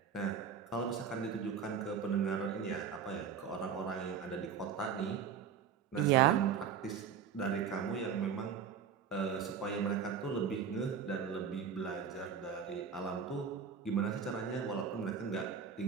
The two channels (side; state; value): left; quieter; 7.1 dB